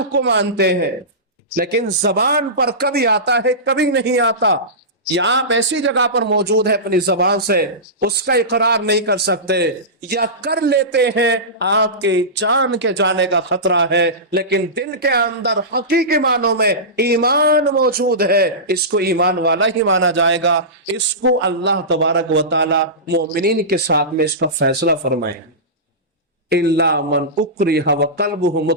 کو مانتے ہیں، لیکن زبان پر کبھی آتا ہے کبھی نہیں آتا، یا آپ ایسی جگہ پر موجود ہے اپنی زبان سے اس کا اقرار نہیں کر سکتے، یا کر لیتے ہیں آپ کے جان کے جانے کا خطرہ ہے، لیکن دل کے اندر حقیقی معنوں میں ایمان موجود ہے، اس کو ایمان والا ہی مانا جائے گا۔ اس کو اللہ تبارک و تعالی مومنین کے ساتھ میں اس کا فیصلہ فرمائے، الا من اکرہ وقلبہ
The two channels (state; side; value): normal; both; correlation -0.19